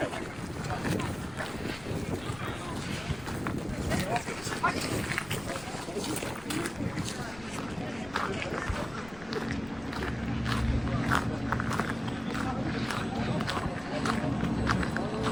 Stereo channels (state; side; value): noise; left; rumble, 18 dB below the sound